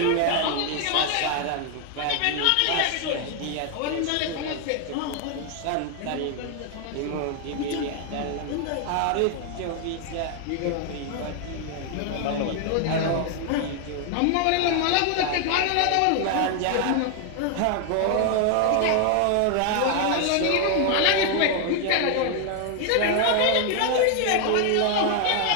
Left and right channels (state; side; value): different; both; correlation 0.00